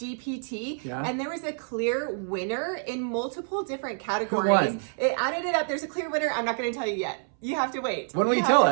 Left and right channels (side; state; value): left; silent; 60 dB below the other